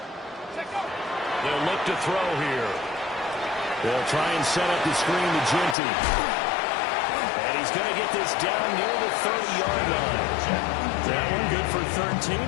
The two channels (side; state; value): right; drops out; at 5.8 s